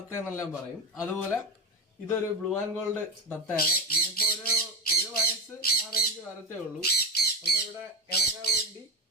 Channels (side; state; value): both; normal; correlation 0.19